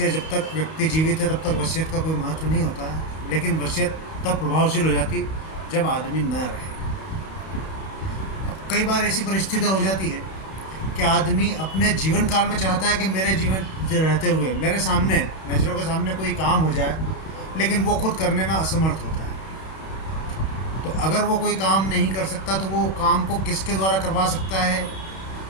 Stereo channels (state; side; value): late; right; 31 ms